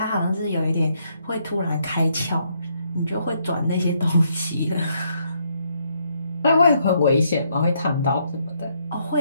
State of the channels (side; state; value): both; inverted; correlation -0.73